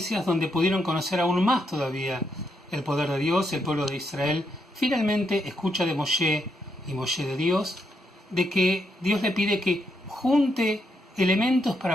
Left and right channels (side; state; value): both; normal; correlation 0.79